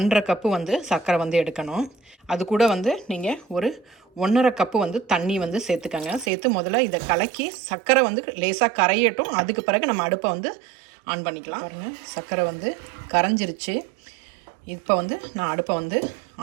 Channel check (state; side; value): drops out; left; at 6.3 s